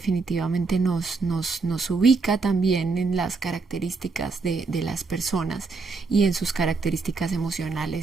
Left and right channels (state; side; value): quieter; left; 4.2 dB